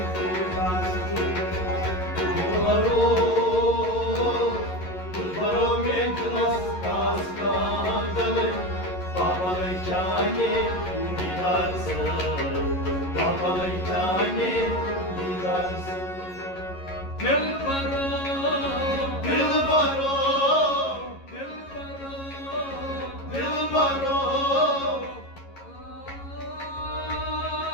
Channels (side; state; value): right; late; 11 ms